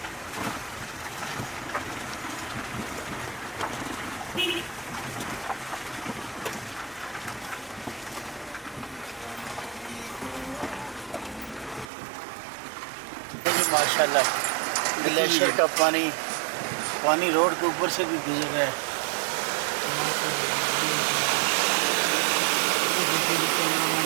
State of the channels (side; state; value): left; drops out; at 11.9 s